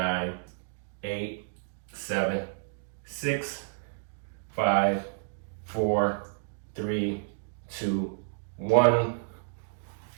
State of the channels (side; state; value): left; silent; digital silence